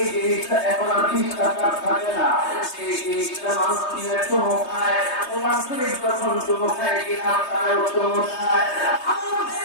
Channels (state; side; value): late; right; 3.2 ms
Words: জিনিসটা এখন আর 20 টাকা থাকে না, সেই জিনিসটা মানুষ নিয়ে চুমো খায়, ওনার শরীর যখন চুমো খায় কিনা তারাও চুমো খায়।